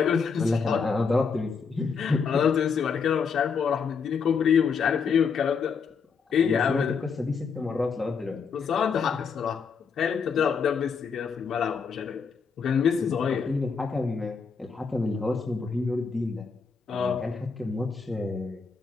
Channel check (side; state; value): right; quieter; 5.6 dB